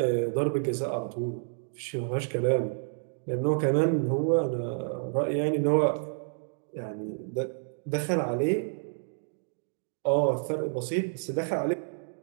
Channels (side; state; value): left; silent; digital silence